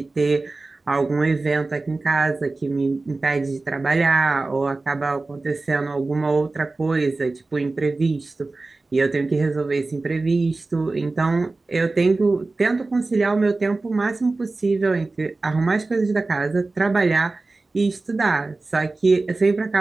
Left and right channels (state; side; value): quieter; left; 3.4 dB